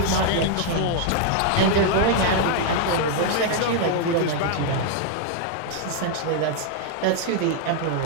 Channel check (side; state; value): both; different; correlation 0.00